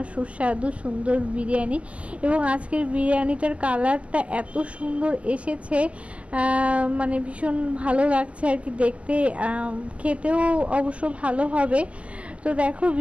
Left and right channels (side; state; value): left; late; 0.062 ms